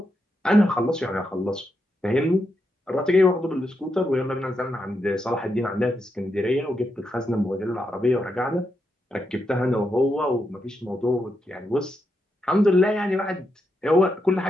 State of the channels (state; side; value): normal; both; correlation 0.83